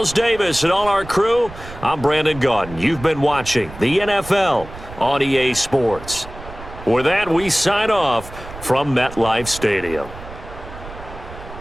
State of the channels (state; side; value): noise; right; rumble, 15 dB below the sound